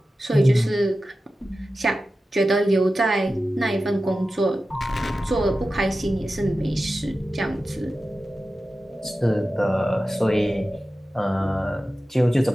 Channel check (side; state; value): both; normal; correlation 0.94